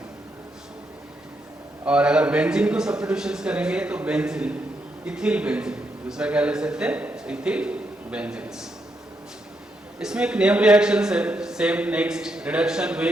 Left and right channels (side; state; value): both; normal; correlation 0.80